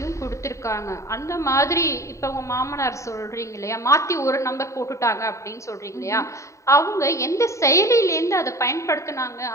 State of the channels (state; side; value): late; right; 0.15 ms